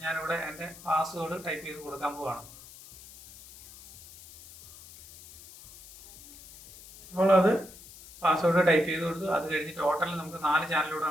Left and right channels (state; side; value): noise; left; hiss, 19 dB below the sound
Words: ഞാനിവിടെ എൻ്റെ പാസ്വേഡ് ടൈപ്പ് ചെയ്ത് കൊടുക്കാൻ പോവാണ്. അപ്പോൾ അത് പാസ്വേഡ് ടൈപ്പ് ചെയ്ത് കൊടുത്തു. അത് കഴിഞ്ഞ് ടോട്ടൽ നമുക്ക് 4